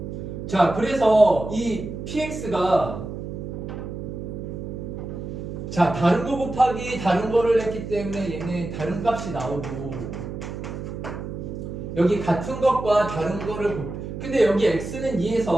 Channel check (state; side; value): noise; right; hum, 7 dB below the sound